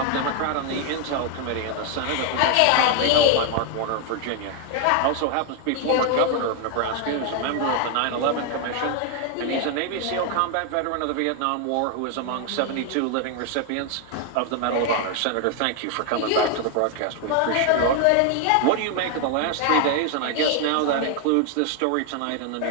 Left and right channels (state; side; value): different; both; correlation 0.01